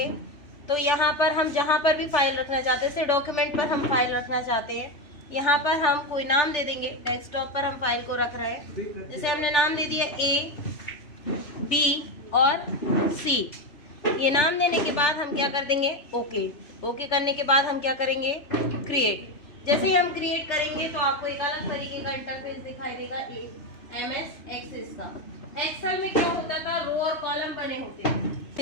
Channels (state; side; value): late; right; 3.4 ms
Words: तो यहाँ पर हम जहाँ पर भी फाइल रखना चाहते हैं, जैसे डॉक्यूमेंट पर हम फाइल रखना चाहते हैं, यहाँ पर हम कोई नाम दे देंगे। डेस्कटॉप पर हम फाइल को रख रहे हैं, जैसे हमने नाम दे दिया A, B और C। ये नाम देने के बाद हम क्या कर देंगे? ओके। ओके करने के बाद हम क्या करेंगे? क्रिएट। जैसे ही हम क्रिएट करेंगे तो आपको एक अलग तरीके का इंटरफेस दिखाई देगा MS एक्सेस का। एक्सेल में क्या होता था? रो और कॉलम बने होते हैं।